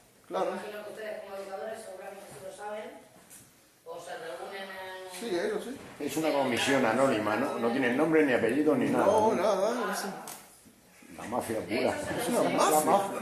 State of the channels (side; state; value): both; identical; correlation 1.00